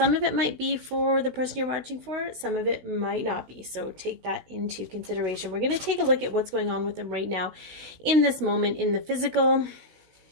of it might be for the person you're watching for, some of it might not be, so take that into consideration. We're going to take a look at what's going on with them right now in this moment in the physical.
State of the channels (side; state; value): left; late; 16 ms